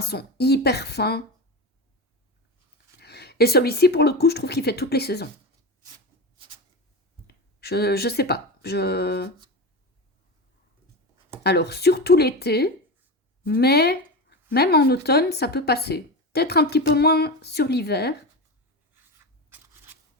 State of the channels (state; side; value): normal; both; correlation 0.22